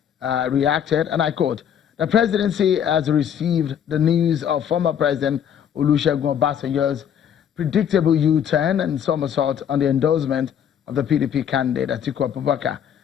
reacted, and I quote, "The presidency has received the news of former President Olusegun Obasanjo's predictable U-turn and somersault on the endorsement of the PDP candidate Atiku Abubakar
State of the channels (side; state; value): right; quieter; 8.8 dB